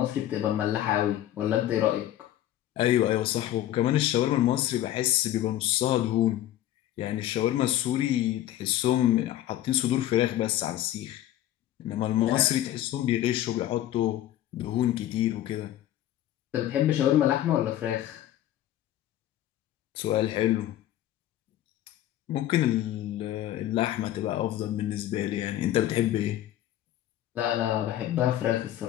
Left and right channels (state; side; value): quieter; right; 13.0 dB